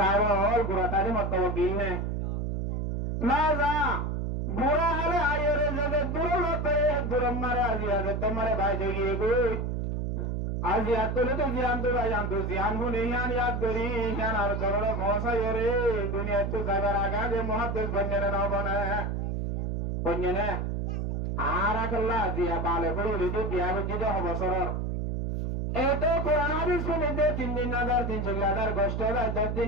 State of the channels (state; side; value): noise; right; hum, 1 dB below the sound